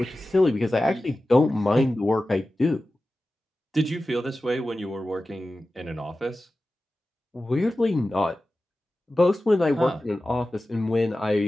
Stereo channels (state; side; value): normal; both; correlation 0.95